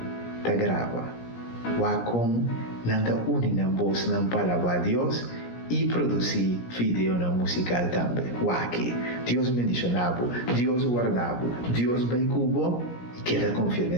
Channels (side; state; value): right; late; 17 ms